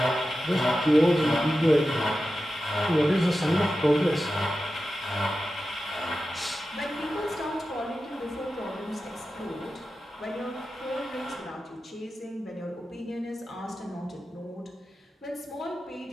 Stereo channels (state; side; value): normal; both; correlation 0.92